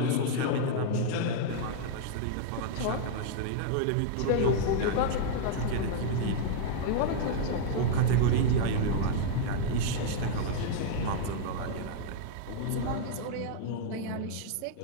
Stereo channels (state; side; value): different; both; correlation -0.01